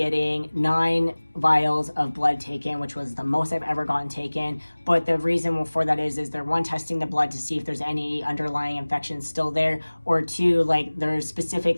9 vials of blood taken, which was the most I've ever gotten taken. But the reason for that is they're, one, testing the blood to see if there's any underlying infection still there, or two, like, there's specific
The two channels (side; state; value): both; inverted; correlation -1.00